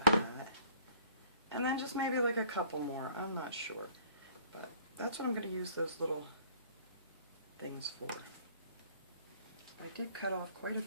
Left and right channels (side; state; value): both; inverted; correlation -0.54